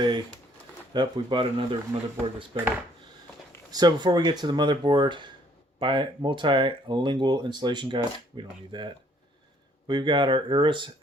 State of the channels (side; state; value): both; normal; correlation 0.63